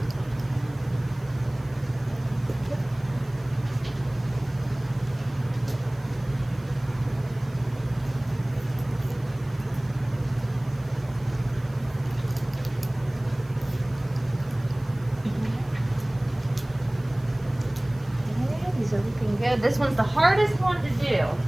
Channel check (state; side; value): noise; right; hiss, 28 dB below the sound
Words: These are looking good. This one's the hardest one to do.